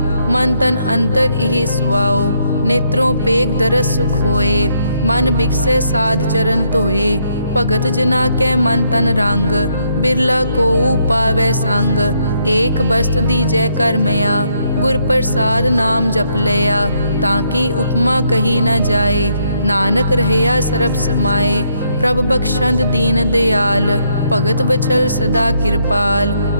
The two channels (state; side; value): inverted; both; correlation -0.74